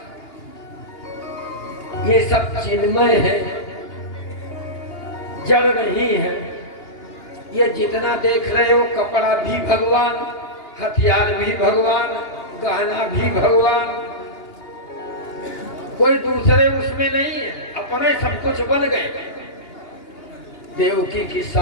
ये सब चिन्मय है, जड़ नहीं है। ये जितना देख रहे हो, कपड़ा भी भगवान, हथियार भी भगवान, गहना भी भगवान, कोई दूसरे उसमें नहीं है। अपने सब कुछ बन गए, देवकी के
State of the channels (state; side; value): late; right; 2.9 ms